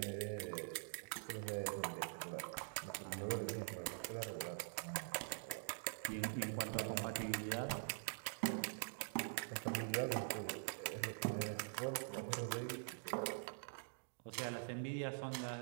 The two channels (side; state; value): left; silent; digital silence